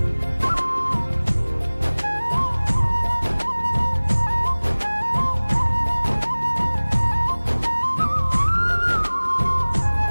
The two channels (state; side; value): inverted; both; correlation -1.00